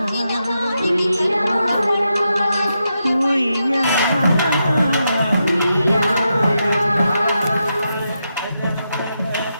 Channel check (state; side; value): inverted; both; correlation -0.85